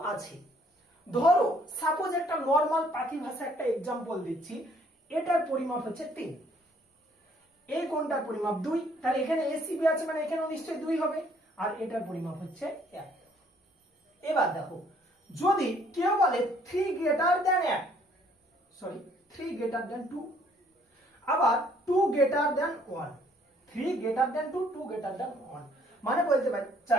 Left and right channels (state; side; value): normal; both; correlation 0.63